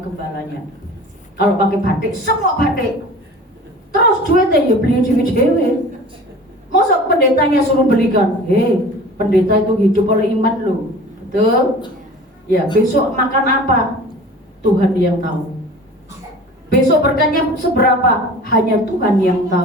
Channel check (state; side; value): normal; both; correlation 0.41